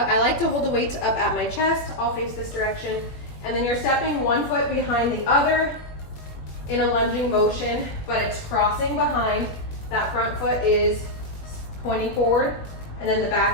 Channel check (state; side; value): late; right; 21 ms